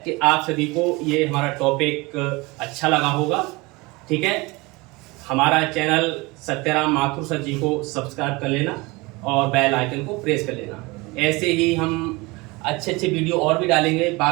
कि आप सभी को ये हमारा टॉपिक अच्छा लगा होगा। ठीक है, हमारा चैनल सत्यराम माथुर सर जी को सब्सक्राइब कर लेना और बेल आइकन को प्रेस कर लेना। ऐसे ही हम अच्छे अच्छे वीडियो और भी डालेंगे।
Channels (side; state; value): left; quieter; 24.2 dB